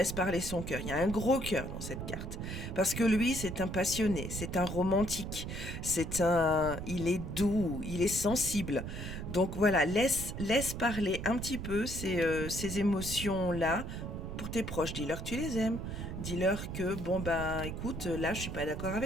parler son cœur. Il y a un gros cœur dans cette carte. Parce que lui, c'est un passionné, c'est un romantique, il est doux, il est sensible. Donc voilà, laisse parler un petit peu ces émotions-là pour tes proches. Dis-leur que tu les aimes. Dis-leur que, écoute, là, je suis pas d'accord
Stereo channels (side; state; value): right; noise; rumble, 6 dB below the sound